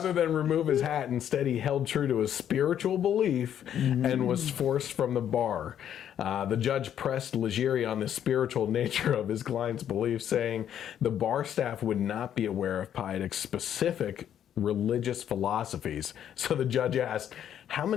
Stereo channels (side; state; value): right; quieter; 9.9 dB